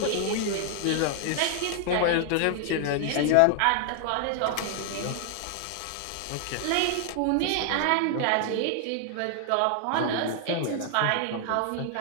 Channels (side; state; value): both; different; correlation 0.00